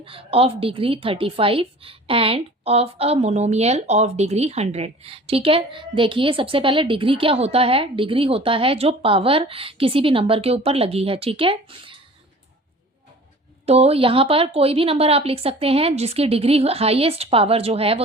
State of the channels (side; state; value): both; normal; correlation 0.44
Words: of degree 35 end of a monomial of degree 100। ठीक है, देखिए सबसे पहले डिग्री क्या होता है। डिग्री होता है जो पावर किसी भी नंबर के ऊपर लगी है। ठीक है, तो यहाँ पर कोई भी नंबर आप लिख सकते हैं जिसकी डिग्री हाईएस्ट पावर जो है वो